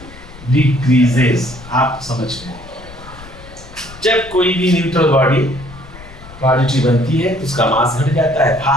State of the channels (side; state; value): left; noise; rumble, 18 dB below the sound